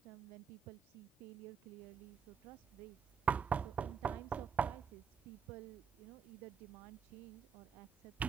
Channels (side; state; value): left; quieter; 6.5 dB